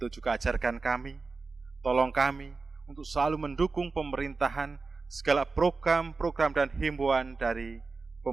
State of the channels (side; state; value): left; quieter; 4.1 dB